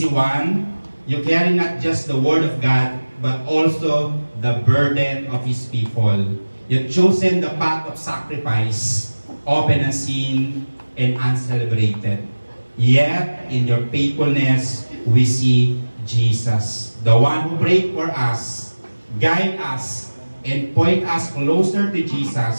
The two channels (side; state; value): both; inverted; correlation -1.00